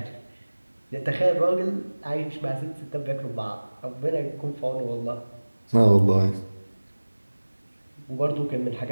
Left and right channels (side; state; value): both; inverted; correlation -1.00